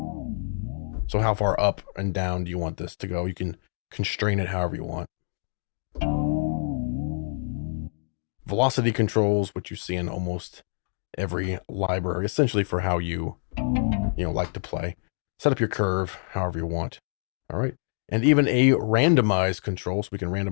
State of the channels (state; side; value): silent; right; digital silence